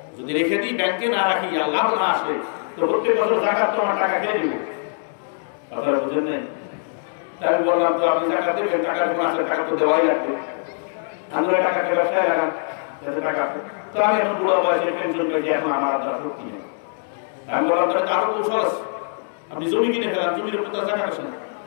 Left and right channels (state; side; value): silent; right; digital silence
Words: যদি রেখে দিই ব্যাংকে না রাখি আর লাভ না আসে তো প্রত্যেক বছর জাকাত তো আমার টাকা খেয়ে দিব। কথা বুঝেন নাই? তাই আমি বললাম তো আপনি জাকাত দেবেন, টাকা যখন আসে টাকা তো দেওয়াই লাগবে, আমরা টাকাকে ব্যবসায় লাগান যাতে টাকা আসে। তো আমি এখন বুড়ো বয়সে পেনশন পেয়েছি, এখন আমার দ্বারা শক্তি নেই। আমি বললাম তাহলে আরো কৌশল আছে, আপনি জমি কিনে ফেলান, জমির উপর তো জাকাত আসে না,